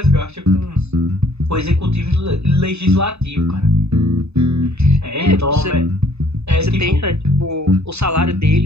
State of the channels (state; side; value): late; left; 0.80 ms